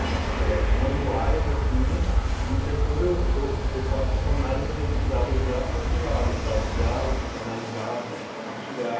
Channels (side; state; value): both; identical; correlation 1.00